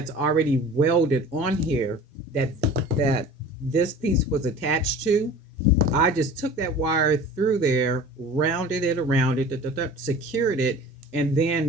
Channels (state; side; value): normal; both; correlation 0.41